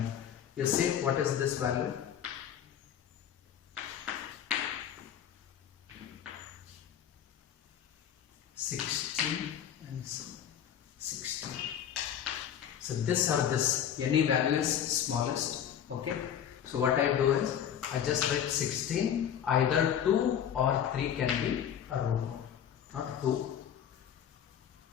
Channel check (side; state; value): right; quieter; 9.3 dB